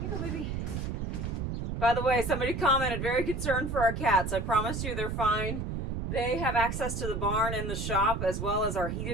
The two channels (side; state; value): right; noise; rumble, 3 dB below the sound